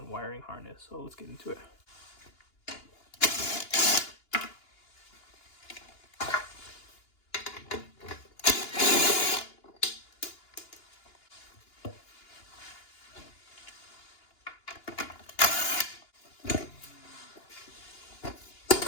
wiring harness. So let's get into it.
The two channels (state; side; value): late; right; 2.9 ms